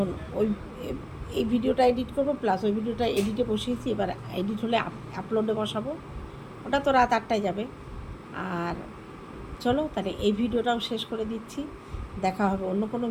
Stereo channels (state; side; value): identical; both; correlation 1.00